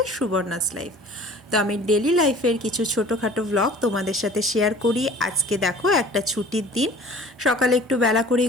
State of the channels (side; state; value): both; normal; correlation 0.47